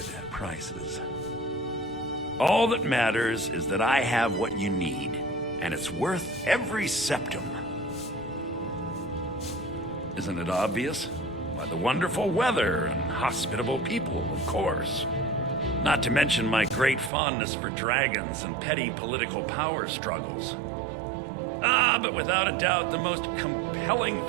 prices. All that matters is that I have what you need, and it's worth every septum. Isn't it obvious? Why, the wonderful weather and hospitable people, of course. Not to mention my great fondness for dragons and petty political power struggles. But without a doubt, the most compelling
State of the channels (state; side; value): drops out; left; at 17.1 s